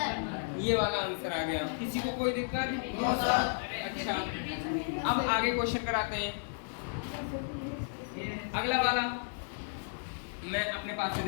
ये वाला आंसर आ गया। किसी को कोई दिक्कत? अच्छा, अब आगे क्वेश्चन कराते हैं। अगला वाला मैं अपने पास से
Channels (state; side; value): silent; right; digital silence